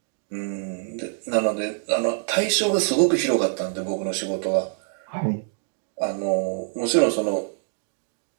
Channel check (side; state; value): left; silent; digital silence